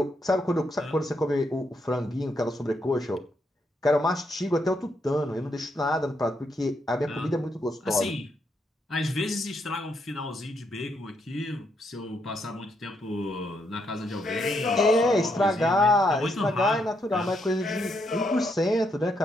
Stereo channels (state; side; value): normal; both; correlation 0.77